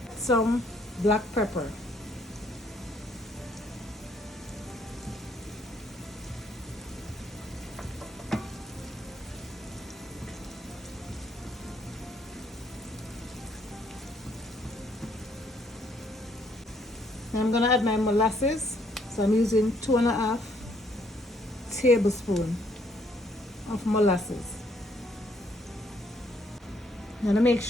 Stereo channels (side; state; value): both; normal; correlation 0.68